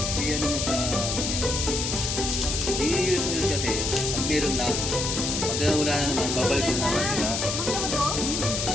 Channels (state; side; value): noise; left; hiss, 1 dB below the sound